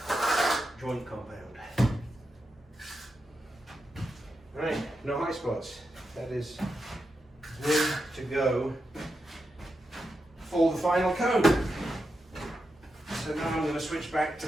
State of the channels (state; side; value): normal; both; correlation 0.87